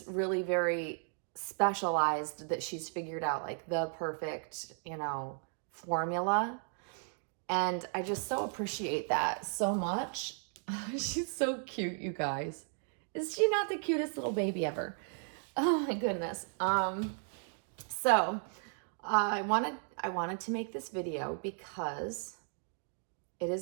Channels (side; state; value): left; silent; 54 dB below the other